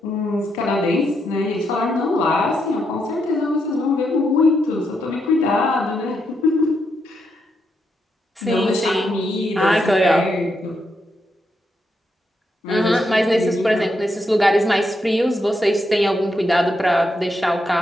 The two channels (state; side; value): normal; both; correlation 0.81